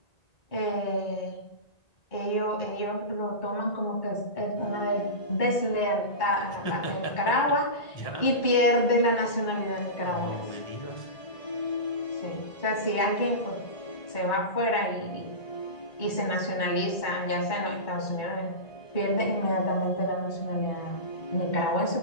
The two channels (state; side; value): late; right; 1.9 ms